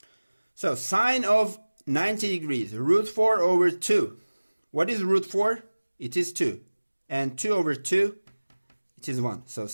So sine of 90 degrees, root 4 over 2. What is root 4? It is 2. And 2 over 2, it is 1. So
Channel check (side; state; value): both; inverted; correlation -1.00